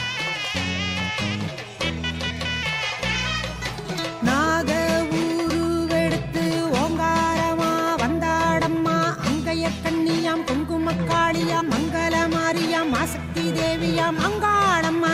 நாக ஊருவெடுத்து ஓங்காரமா வந்தாடம்மா கண்ணியாம் குங்குமக்காளியாம் மங்கள மாரியாம் ஆசக்தி தேவியாம் அங்காளம்மா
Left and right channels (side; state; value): both; identical; correlation 1.00